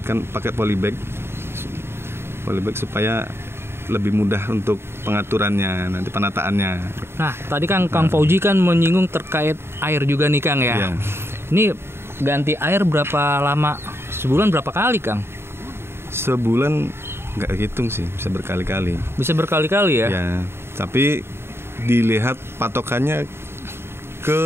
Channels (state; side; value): late; left; 0.12 ms